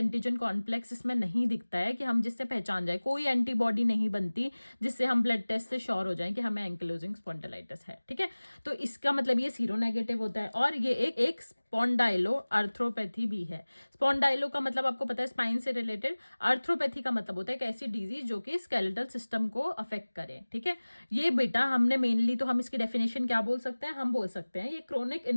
कॉम्प्लेक्स इसमें नहीं दिखता है कि हम जिससे पहचान जाए। कोई एंटीबॉडी नहीं बनती जिससे हम ब्लड टेस्ट से श्योर हो जाए कि हमें एंकिलोजिंग स्पॉन्डिलाइटिस है, ठीक है। तो इसका मतलब ये सीरो नेगेटिव होता है। और ये एक स्पॉन्डाइलो अर्थ्रोपैथी भी है। स्पॉन्डाइलो का मतलब आपको पता है स्पाइन से रिलेटेड, अर्थ्रोपैथी का मतलब होता है एक ऐसी डिजीज जो कि स्केलेटल सिस्टम को अफेक्ट करे, ठीक है। ये बेटा हमने मेनली, तो हम इसकी डेफिनेशन क्या बोल सकते हैं, हम बोल सकते हैं ये क्रोनिक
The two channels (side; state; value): both; inverted; correlation -1.00